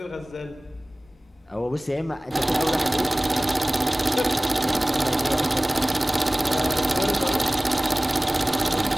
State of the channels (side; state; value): both; normal; correlation 0.98